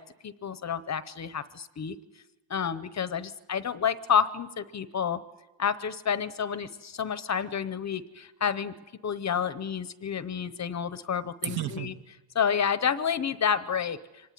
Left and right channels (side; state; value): right; quieter; 6.5 dB